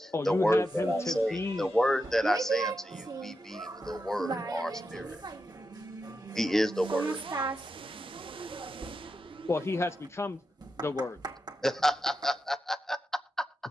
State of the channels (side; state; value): both; normal; correlation 0.88